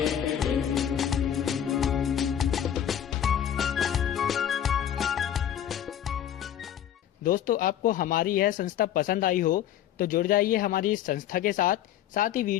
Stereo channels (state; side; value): quieter; right; 10.3 dB